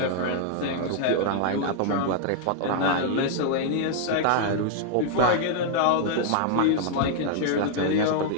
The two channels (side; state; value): both; different; correlation -0.01